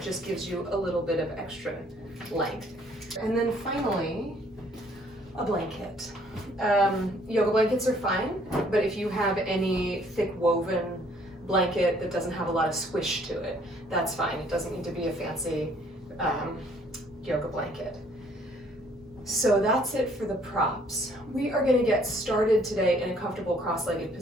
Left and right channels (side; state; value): both; normal; correlation 0.62